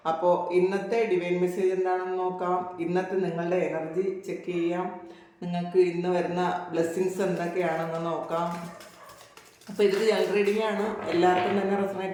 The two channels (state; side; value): identical; both; correlation 1.00